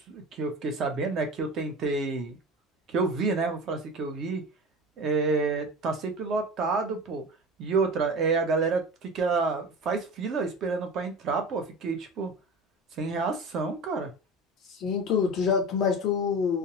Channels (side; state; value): both; normal; correlation 0.32